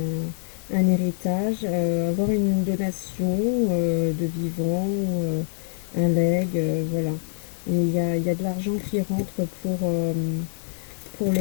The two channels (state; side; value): silent; right; digital silence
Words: un héritage, avoir une donation de vivant ou un legs, voilà. Et il y a de l'argent qui rentre pour